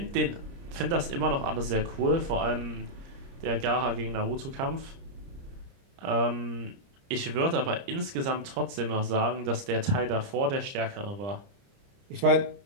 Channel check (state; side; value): late; left; 30 ms